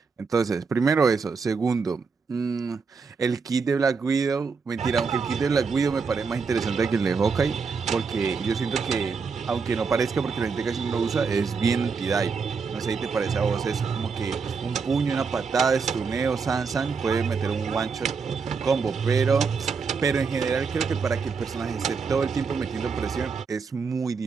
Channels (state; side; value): quieter; left; 5.2 dB